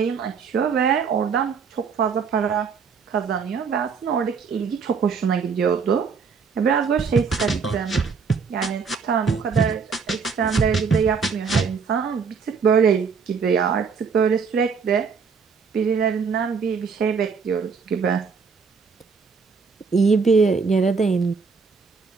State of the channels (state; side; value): quieter; left; 5.6 dB